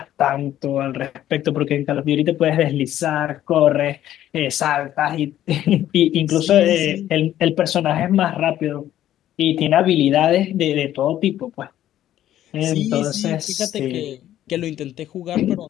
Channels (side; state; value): right; quieter; 12.4 dB